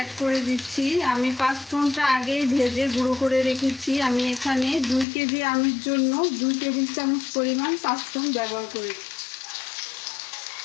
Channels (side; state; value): right; drops out; at 5.1 s